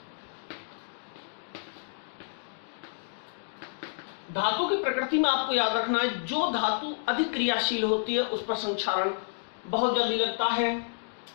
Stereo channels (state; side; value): silent; right; digital silence